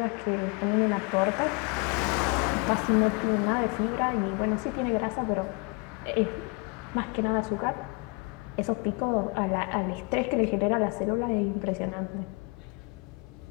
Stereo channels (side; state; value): right; quieter; 31.2 dB